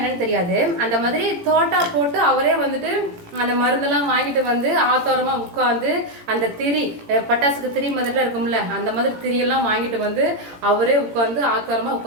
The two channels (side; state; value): left; late; 17 ms